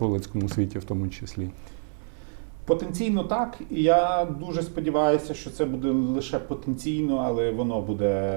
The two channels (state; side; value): silent; left; 56 dB below the other